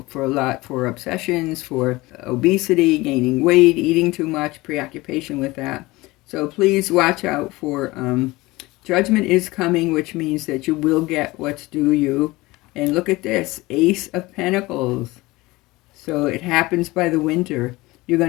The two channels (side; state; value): right; quieter; 20.8 dB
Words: for a lot for obsessions, for obesity, gaining weight, eating too much, preoccupation with that. So please watch out for Judgment is coming, which means that you will get what's due you. And look at this, Ace of Pentacles. So it happens by the winter. You're